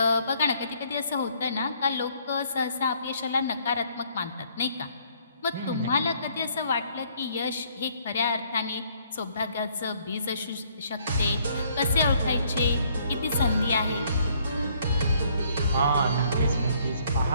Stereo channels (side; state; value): both; inverted; correlation -0.65